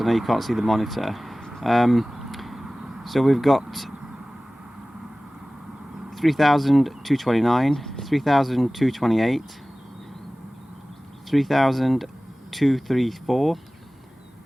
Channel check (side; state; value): both; normal; correlation 0.98